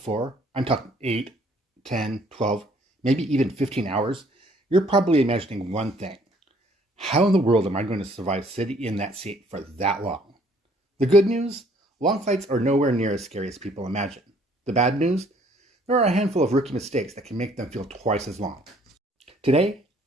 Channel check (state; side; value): normal; both; correlation 0.61